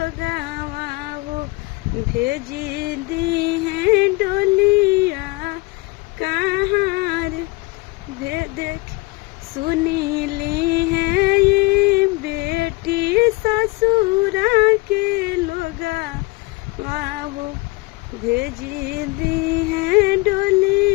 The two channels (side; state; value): right; quieter; 23.5 dB